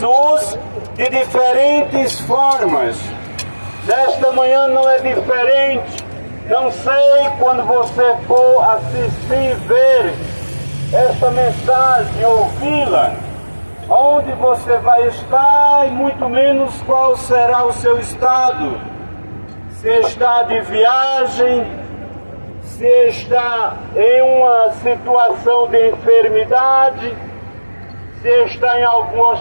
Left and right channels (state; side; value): inverted; both; correlation -1.00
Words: de diferentes formas. Nesta manhã não é diferente. Não sei quando você for assistir, ver esta mensagem, ouvi-la, onde você vai estar e muito menos qual será o seu estado. Se está de viagem, se está em uma situação de enfermidade, se está em algum